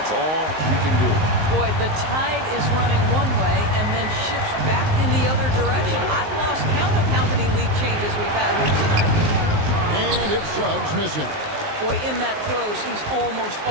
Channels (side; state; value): left; late; 19 ms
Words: all you can do. Boy, the tide is running one way and then shifts back in the other direction. I've lost count of how many lead changes we've had here tonight. And it's Suggs missing. Boy, in that close, he's almost